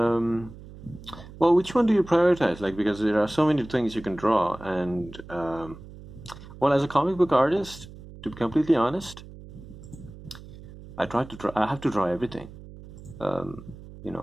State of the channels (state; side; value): noise; right; hum, 17 dB below the sound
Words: well, which one do you prioritize? Like, because there are so many things you can draw, and well, as a comic book artist, to be completely honest, I try to draw. I have to draw everything. You